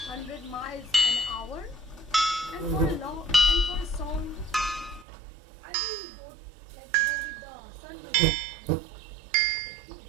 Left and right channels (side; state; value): left; drops out; at 5.1 s